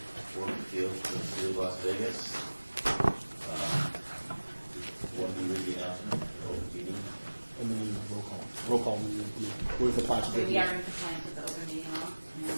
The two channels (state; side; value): inverted; both; correlation -1.00